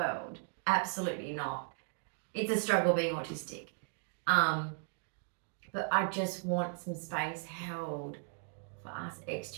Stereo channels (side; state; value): left; silent; digital silence